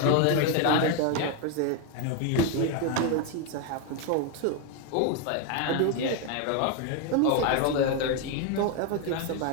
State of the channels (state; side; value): different; both; correlation 0.01